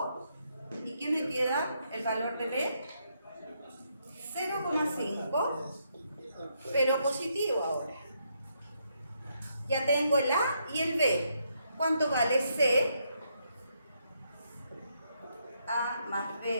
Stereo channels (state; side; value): inverted; both; correlation -0.77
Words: y ¿qué me queda? El valor de B 0,5, pero positivo ahora. Ya tengo el A y el B. ¿Cuánto vale C? A más